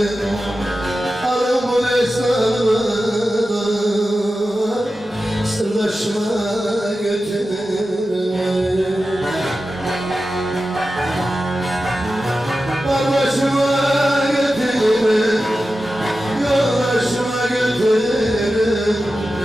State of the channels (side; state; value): both; normal; correlation 0.93